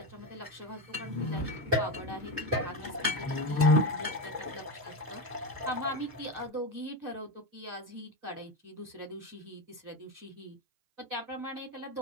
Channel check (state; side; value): late; left; 6.5 ms